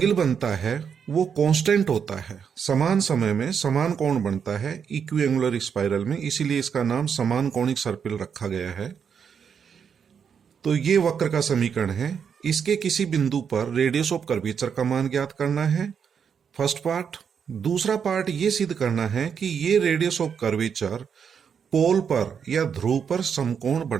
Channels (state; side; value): quieter; left; 7.1 dB